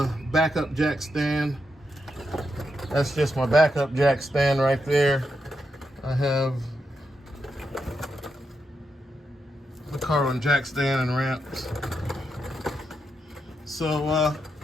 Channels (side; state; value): both; normal; correlation 0.84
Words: backup jack stand. That's just my backup jack stand right there. I have the carbon jack stand and ramps. So